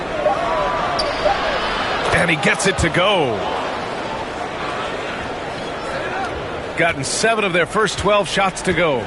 And he gets it to go. Gotten 7 of their first 12 shots to go.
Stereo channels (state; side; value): identical; both; correlation 1.00